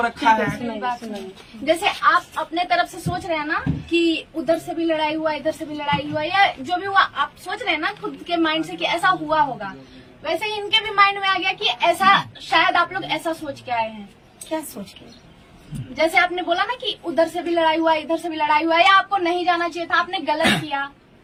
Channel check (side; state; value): both; identical; correlation 1.00